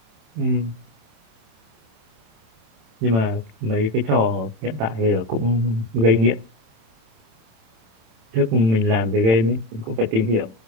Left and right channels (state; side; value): late; left; 27 ms